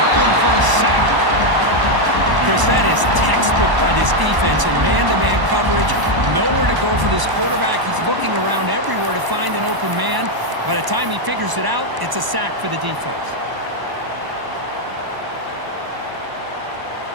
him for a sack. Chris, that is textbook by this defense in man-to-man coverage. Nowhere to go for this quarterback. He's looking around everywhere to find an open man. By the time he figures it out, it's a sack for the defense.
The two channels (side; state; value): left; late; 1.0 ms